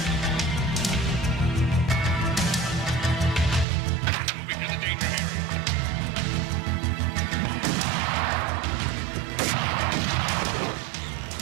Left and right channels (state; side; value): drops out; left; at 3.7 s